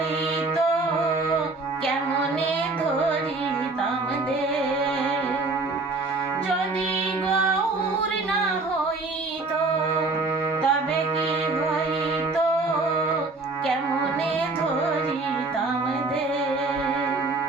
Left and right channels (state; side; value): quieter; left; 3.5 dB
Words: কেমনে ধরিতাম দে যদি গৌরী না হইত তবে কি হইত কেমনে ধরিতাম দে